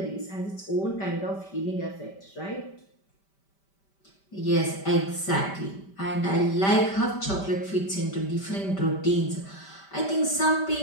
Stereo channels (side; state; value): right; late; 5.1 ms